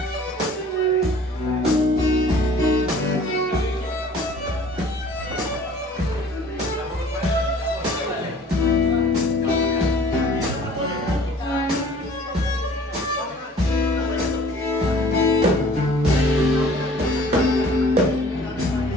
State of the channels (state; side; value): normal; both; correlation 0.50